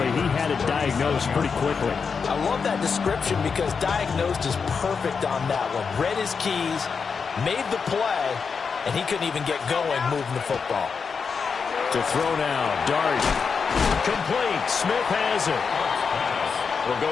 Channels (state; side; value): quieter; right; 5.6 dB